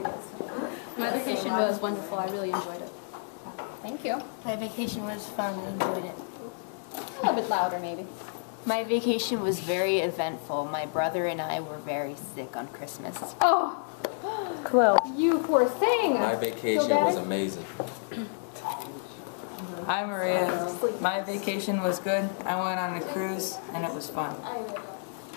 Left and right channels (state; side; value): silent; right; digital silence